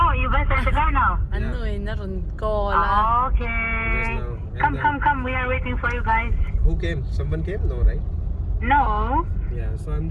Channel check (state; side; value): identical; both; correlation 1.00